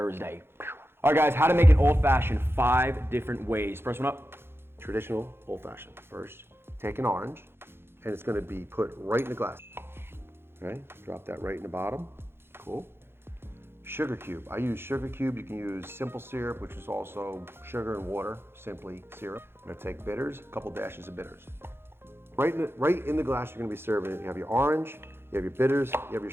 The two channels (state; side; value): late; left; 0.11 ms